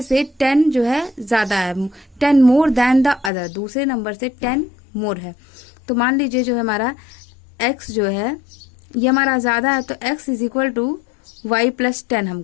से 10 जो है ज्यादा है, 10 more than द अदर, दूसरे नंबर से 10 more है। तो मान लीजिए जो है हमारा x जो है ये हमारा ज्यादा है, तो x = y + 10 हम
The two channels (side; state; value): right; drops out; at 3.3 s